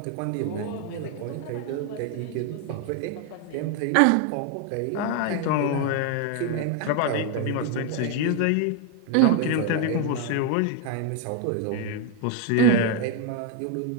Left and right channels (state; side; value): different; both; correlation 0.01